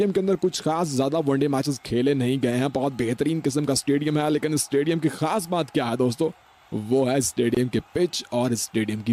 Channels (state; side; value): identical; both; correlation 1.00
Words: के अंदर कुछ खास ज्यादा वनडे मैचेस खेले नहीं गए हैं। बहुत बेहतरीन किस्म का स्टेडियम है, लेकिन इस स्टेडियम की खास बात क्या है दोस्तों, वो है स्टेडियम के पिच और स्टेडियम